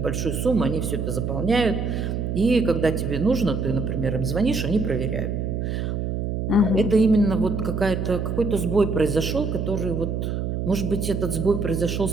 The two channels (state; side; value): noise; right; hum, 2 dB below the sound